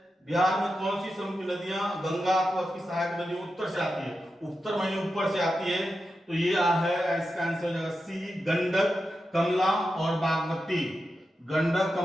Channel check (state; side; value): normal; both; correlation 0.90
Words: बिहार में कौन सी समुद्री नदियां गंगा अथवा उसकी सहायक नदियों उत्तर से आती है, उत्तर माने ऊपर से आती है, तो ये है इसका आंसर हो जाएगा सी, गंडक, कमला और बागमती, गंडक,